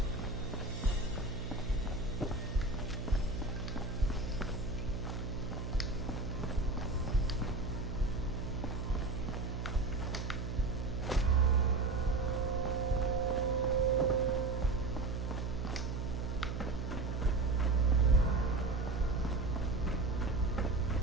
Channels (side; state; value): right; noise; hum, 3 dB below the sound